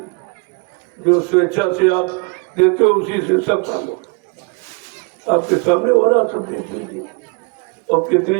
जो स्वेच्छा से आप देते हो उसी से सब काम होता। आपके सामने हो रहा सब देख लीजिए, और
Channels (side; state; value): left; quieter; 32.8 dB